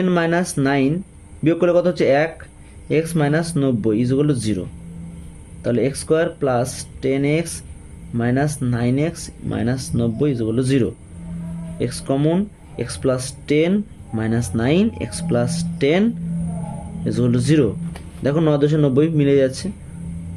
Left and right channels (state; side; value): identical; both; correlation 1.00